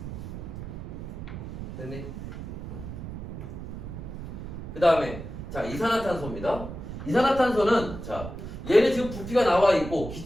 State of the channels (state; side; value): noise; right; rumble, 9 dB below the sound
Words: 됐니? 그 다음에 자, 이산화탄소입니다. 이산화탄소는 자, 얘는 지금 부피가 나와 있고